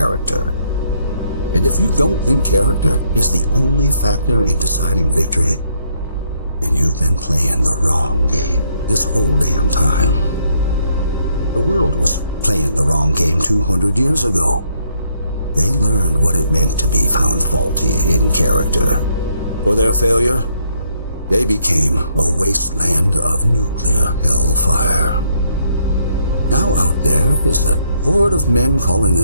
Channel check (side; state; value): both; inverted; correlation -0.71